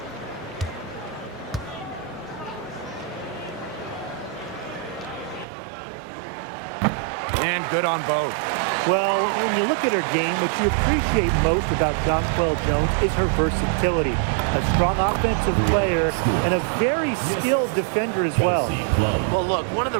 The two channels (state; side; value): drops out; left; at 5.5 s